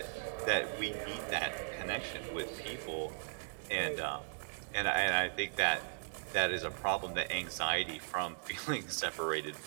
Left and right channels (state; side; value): silent; left; digital silence